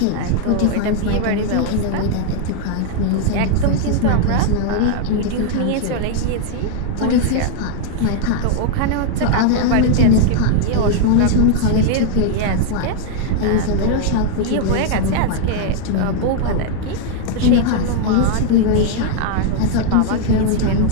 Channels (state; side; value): different; both; correlation 0.00